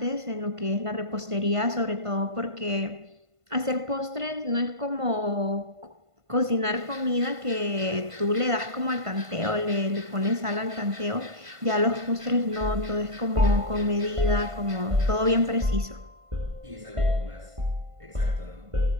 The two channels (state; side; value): late; left; 1.5 ms